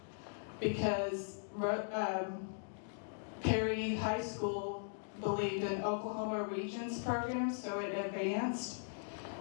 because Perry High School believed in Oklahoma Regions program, so it advanced,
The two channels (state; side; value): silent; right; digital silence